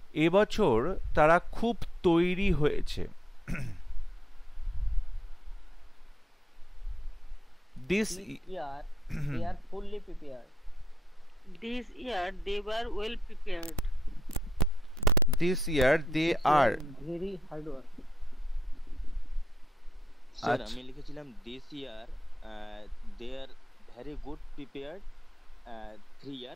এবছর তারা খুব তৈরি হয়েছে। This year they are fully prepared. This year they were well prepared. This year they This are very hard work. Sir আচ্ছা। আমি লিখেছিলাম this year they are very good prepared 3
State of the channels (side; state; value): both; normal; correlation 0.81